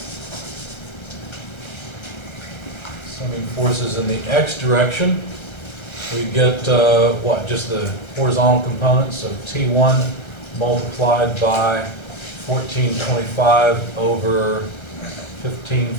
Summing forces in the x direction, we get what? Just the horizontal components, so T1 multiplied by 1425 over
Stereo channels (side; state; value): right; late; 1.3 ms